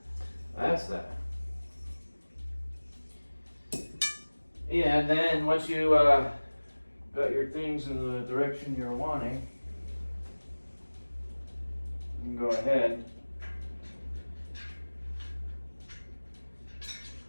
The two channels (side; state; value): both; inverted; correlation -1.00